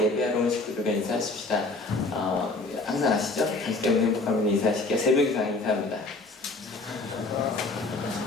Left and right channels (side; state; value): right; quieter; 3.3 dB